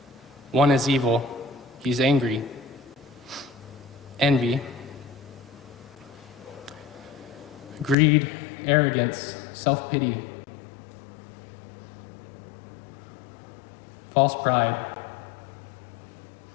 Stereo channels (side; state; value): right; drops out; at 8.0 s